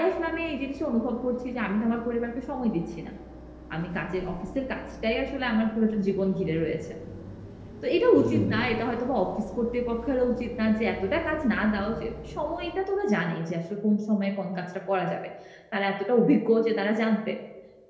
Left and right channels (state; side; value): identical; both; correlation 1.00